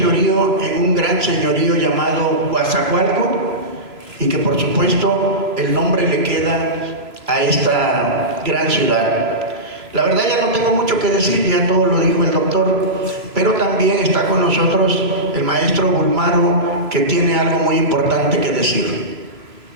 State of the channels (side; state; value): left; late; 3.0 ms